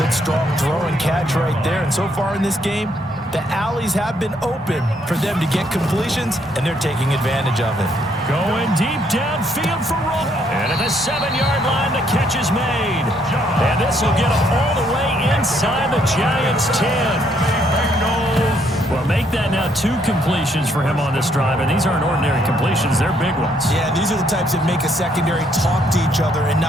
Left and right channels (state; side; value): noise; right; rumble, 22 dB below the sound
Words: strong throw and catch right there. And so far in this game, the alleys have been open for them to get completions, and they're taking advantage of it. Going deep downfield for Roll. And at the 7-yard line, the catch is made. And this will get them all the way inside the Giants' 10. Bengals Well, make that now 2 completions for him on this drive, and these aren't ordinary completions. They're big ones. Yeah, these are the types that make a secondary talk to each other and